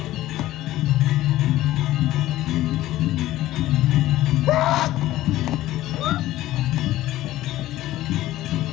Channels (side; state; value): right; quieter; 15.3 dB